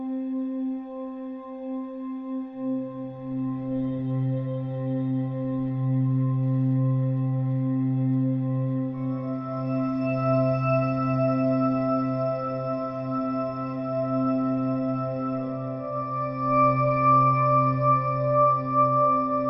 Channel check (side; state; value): both; identical; correlation 1.00